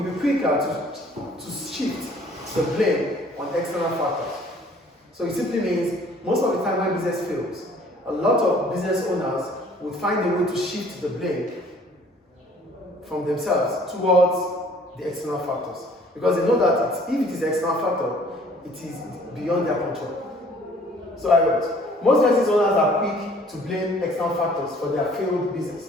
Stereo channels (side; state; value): both; normal; correlation 0.55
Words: to shift the blame on external factors. So it simply means most of the time when business fails, a lot of business owners would find a way to shift the blame from themselves towards the external factors. Because they know that if it is the external factor, it is beyond their control. So I wrote, most business owners are quick to blame external factors for their failed